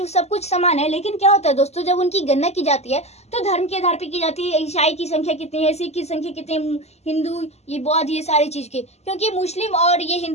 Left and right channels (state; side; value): late; right; 0.31 ms